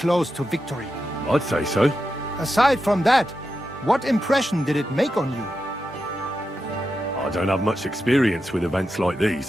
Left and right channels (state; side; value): normal; both; correlation 0.88